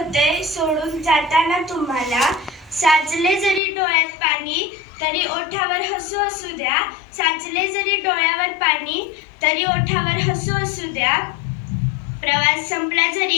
सोडून जाताना तुम्हाला. साचले जरी डोळ्यात पाणी तरी ओठावर हसू असू द्या. साचले जरी डोळ्यावर पाणी तरी ओठावर हसू असू द्या. प्रवास संपला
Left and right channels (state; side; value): drops out; right; at 3.6 s